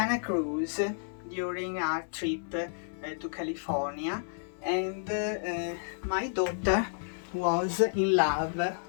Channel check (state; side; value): silent; right; digital silence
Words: Cruz during our trip to California, and my daughter was in love